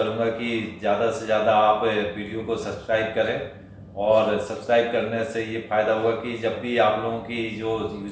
कि ज़्यादा से ज़्यादा आप वीडियो को सब्सक्राइब करें। और सब्सक्राइब करने से ये फ़ायदा होगा कि जब भी आप लोगों की जो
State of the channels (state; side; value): identical; both; correlation 1.00